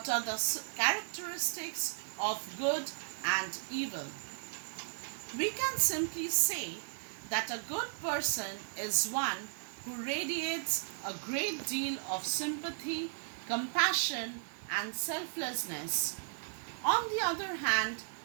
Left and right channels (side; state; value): left; silent; digital silence